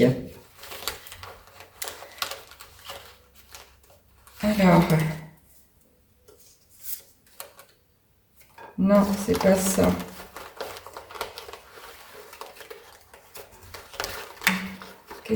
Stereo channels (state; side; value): identical; both; correlation 1.00